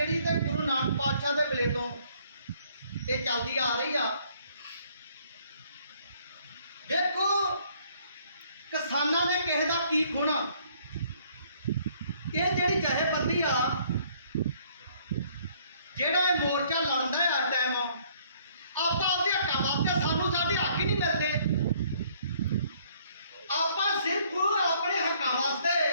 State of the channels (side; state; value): both; inverted; correlation -0.62